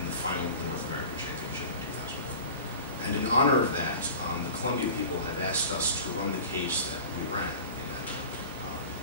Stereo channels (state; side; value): inverted; both; correlation -0.38